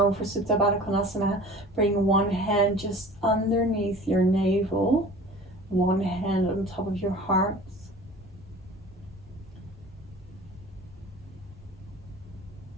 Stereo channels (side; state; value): both; normal; correlation 0.42